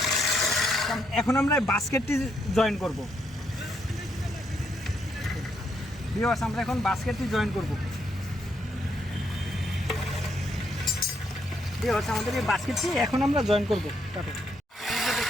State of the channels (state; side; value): normal; both; correlation 0.76